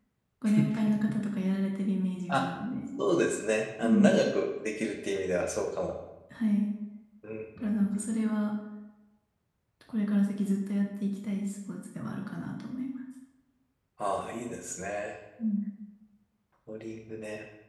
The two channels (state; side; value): identical; both; correlation 1.00